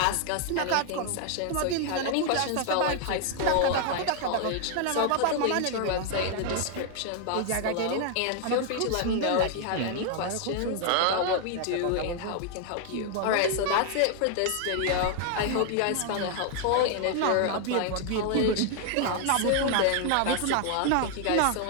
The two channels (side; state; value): both; different; correlation 0.00